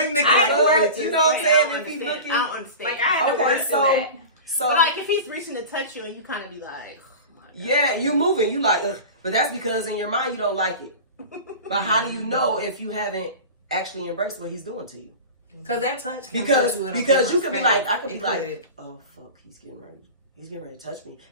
I like know you what, ready to- you know what I'm saying? If he's looking, I don't understand. Like I had to Okay, work through so- that. so like if he's reaching to touch you and you kind of be like, yeah, you moving, you like, ugh. But that's because in your mind you don't like it. But how do you know if you haven't actually embraced what he's doing to you? Cause that touch can Because put you in a you different could be space. like, I could be It like, oh fuck, he's getting ready to touch me,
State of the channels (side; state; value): both; inverted; correlation -0.32